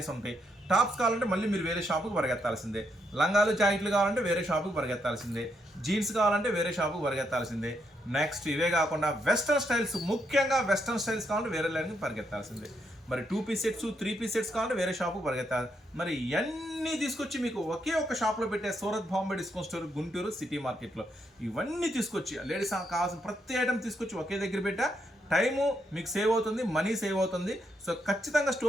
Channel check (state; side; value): normal; both; correlation 0.78